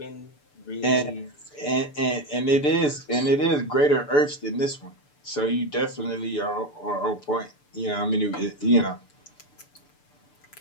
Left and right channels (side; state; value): right; late; 6.8 ms